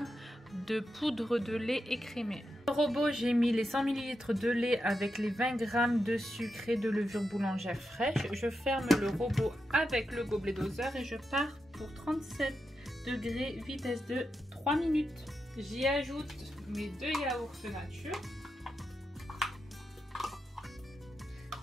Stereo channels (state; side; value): normal; both; correlation 0.87